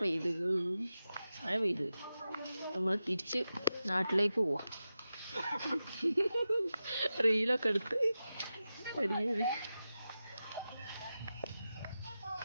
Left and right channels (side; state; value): both; inverted; correlation -0.92